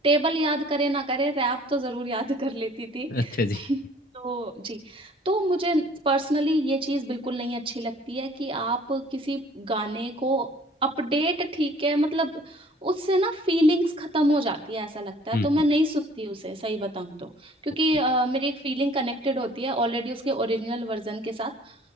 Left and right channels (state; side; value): normal; both; correlation 0.54